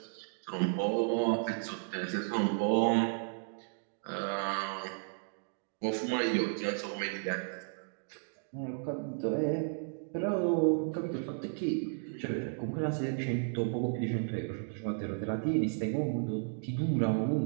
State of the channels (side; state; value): left; silent; digital silence